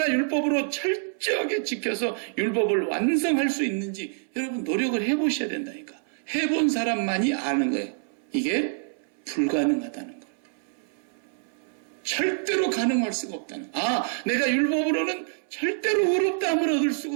율법으로 철저하게 지켜서 율법을 완성할 수 있는지 여러분 노력을 해보셔야 된다니까. 해본 사람만이 아는 거예요. 이게 불가능하다는 거예요. 절대로 가능할 수가 없다는 거예요. 아, 내가 율법으로는 절대로 의롭다함을 얻을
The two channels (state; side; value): silent; left; 61 dB below the other